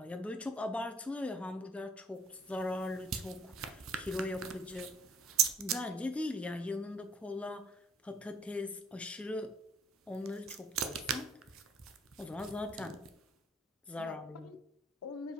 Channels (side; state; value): both; normal; correlation 0.59